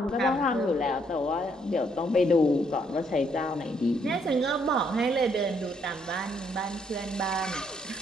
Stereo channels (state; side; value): normal; both; correlation 0.71